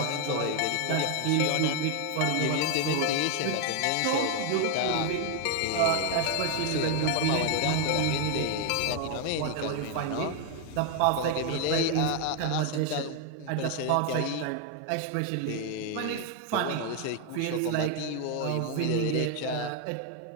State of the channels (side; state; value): both; different; correlation 0.00